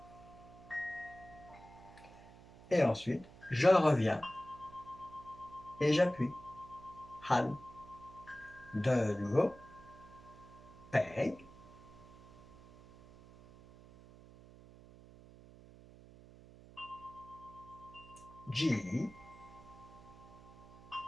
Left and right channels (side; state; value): right; noise; hum, 20 dB below the sound